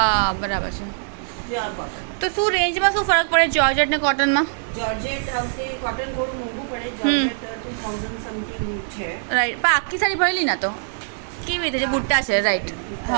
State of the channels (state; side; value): silent; left; digital silence